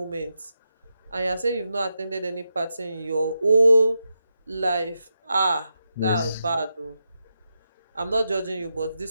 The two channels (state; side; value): inverted; both; correlation -0.87